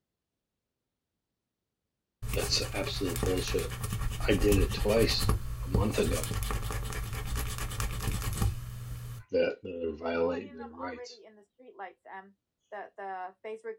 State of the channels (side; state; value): both; identical; correlation 1.00